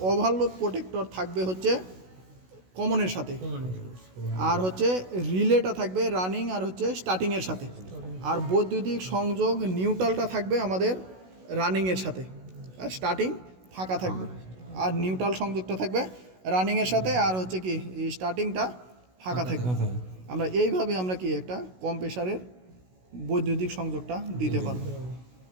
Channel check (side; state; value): left; late; 16 ms